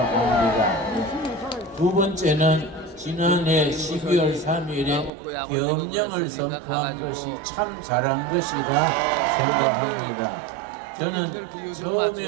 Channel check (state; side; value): drops out; left; at 5.1 s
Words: 두 번째는 지난해 12월 3일에 계엄령을 선포한 것이 참 잘한 것이라 생각합니다. 저는